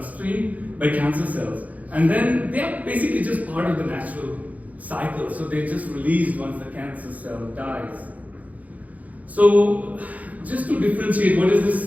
by cancer cells. And then they are basically just part of the natural cycle. So they're just released once the cancer cell dies. So just to differentiate, what is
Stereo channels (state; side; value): late; left; 0.074 ms